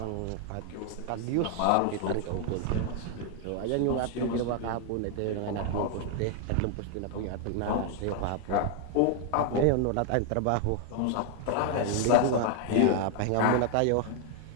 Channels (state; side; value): different; both; correlation 0.00